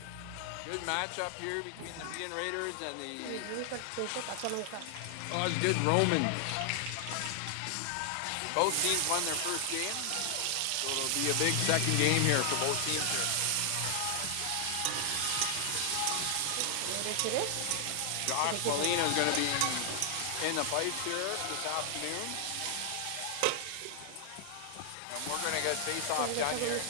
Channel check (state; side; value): different; both; correlation 0.00